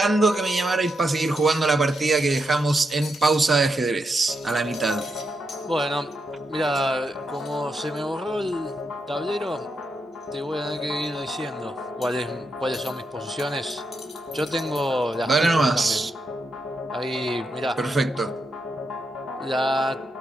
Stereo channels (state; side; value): normal; both; correlation 0.84